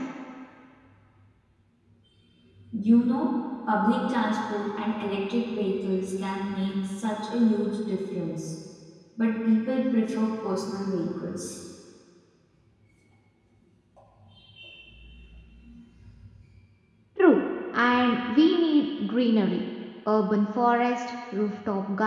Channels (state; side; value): identical; both; correlation 1.00